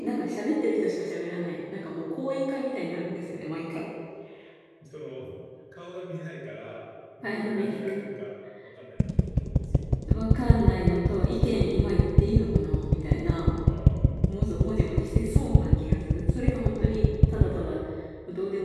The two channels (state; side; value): identical; both; correlation 1.00